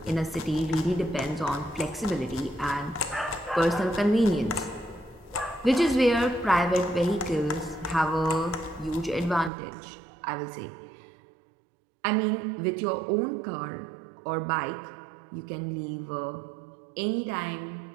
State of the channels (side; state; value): left; drops out; at 9.5 s